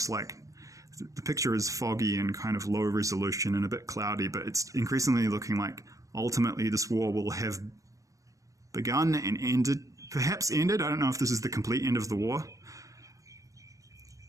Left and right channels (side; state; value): left; late; 0.16 ms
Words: like the picture is foggy and kind of low resolution and a bit cloudy, but it's increasingly looking like ultimately this war will have begun and perhaps ended. I don't know if this is the complete end of the war.